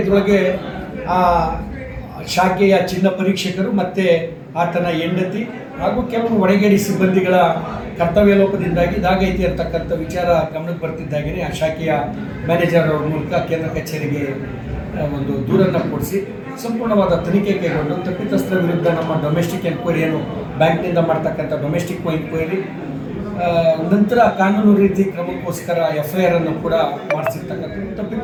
ಇದರೊಳಗೆ ಆ ಶಾಖೆಯ ಚಿನ್ನ ಪರೀಕ್ಷಕರು ಮತ್ತು ಆತನ ಹೆಂಡತಿ ಹಾಗೂ ಕೆಲವು ಒಳಗೇಡಿ ಸಿಬ್ಬಂದಿಗಳ ಕರ್ತವ್ಯ ಲೋಪದಿಂದಾಗಿ ಇದಾಗೈತಿ ಅಂತಕ್ಕಂಥ ವಿಚಾರ ಗಮನಕ್ಕೆ ಬರ್ತಿದ್ದಾಗೇ ಆ ಶಾಖೆಯ ಮ್ಯಾನೇಜರ್ ಅವ್ರ ಮೂಲಕ ಕೇಂದ್ರ ಕಚೇರಿಗೆ ಒಂದು ದೂರನ್ನು ಕೊಡಿಸಿ ಸಂಪೂರ್ಣವಾದ ತನಿಖೆ ಕೈಗೊಂಡು ತಪ್ಪಿತಸ್ಥರ ವಿರುದ್ಧ ನಮ್ಮ ಡೊಮೆಸ್ಟಿಕ್ ಎನ್ಕ್ವೈರಿ ಏನು ಬ್ಯಾಂಕ್ನಿಂದ ಮಾಡ್ತಕ್ಕಂಥ ಡೊಮೆಸ್ಟಿಕ್ ಎನ್ಕ್ವೈರಿ ನಂತರ ಕಾನೂನು ರೀತಿ ಕ್ರಮಕ್ಕೋಸ್ಕರ FIR ಅನ್ನು ಕೂಡ ಮಾಡಿಸಿರ್ತಕ್ಕಂಥದ್ದು.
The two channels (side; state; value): both; identical; correlation 1.00